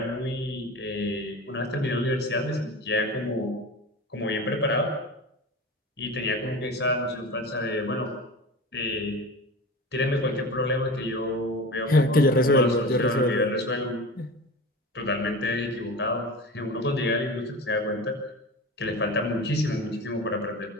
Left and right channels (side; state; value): both; normal; correlation 0.32